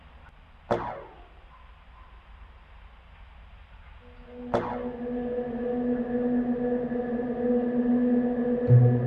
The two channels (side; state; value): both; identical; correlation 1.00